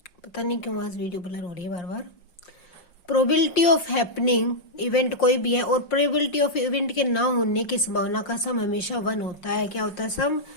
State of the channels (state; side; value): late; right; 5.6 ms